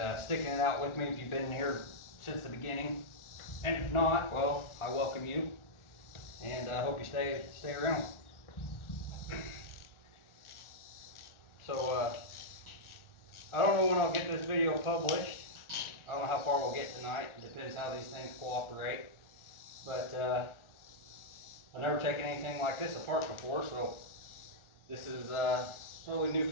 sticking it out with me if you've been here since the beginning. And if not, well, I welcome you, and I hope you stay around. So I don't know when I'll get this video published. I don't know how far we'll get tonight. It depends how these things cooperate. But I've never taken anything like this apart before, so this is totally new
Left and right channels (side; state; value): right; late; 1.4 ms